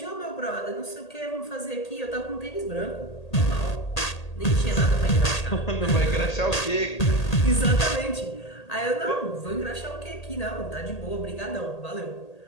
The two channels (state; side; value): late; right; 1.8 ms